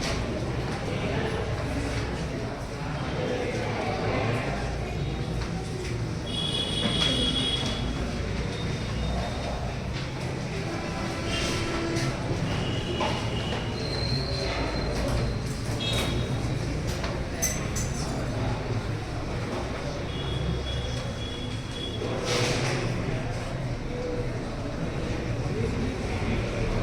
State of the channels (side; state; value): both; identical; correlation 1.00